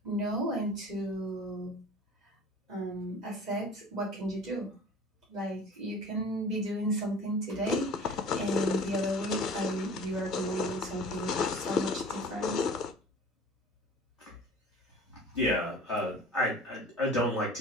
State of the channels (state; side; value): normal; both; correlation 0.43